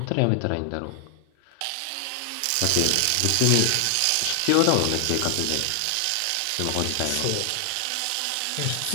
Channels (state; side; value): different; both; correlation 0.00